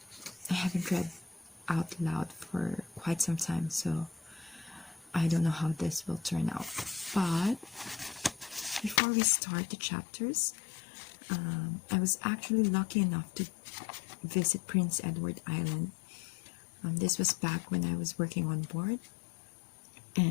I haven't read out loud for quite some time, so I don't know how this will turn out. But before we start the chapters, I was actually lucky enough to visit Prince Edward Island. This was back when I was working on board,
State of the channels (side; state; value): right; drops out; at 9.0 s